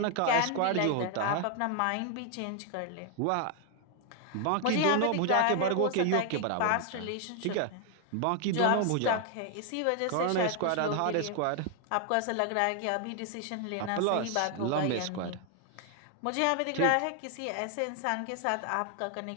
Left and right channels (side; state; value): both; different; correlation 0.00